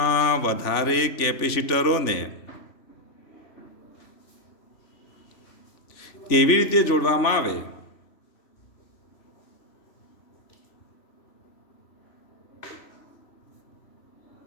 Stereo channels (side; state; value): right; late; 3.0 ms